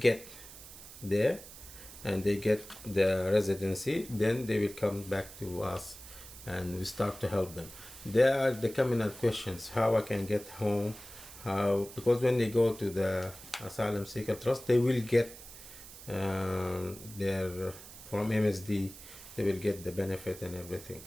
there and they get the residency, then they will come back to us and we start to help them. There are the communal questions, how I can get home, how, because when they go to the Asylum Seeker Trust, they will get their, from MSD, they will get the benefit and everything.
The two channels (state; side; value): noise; right; hiss, 16 dB below the sound